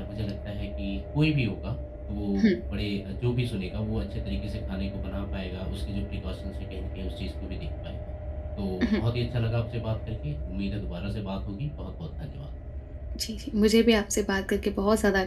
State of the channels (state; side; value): identical; both; correlation 1.00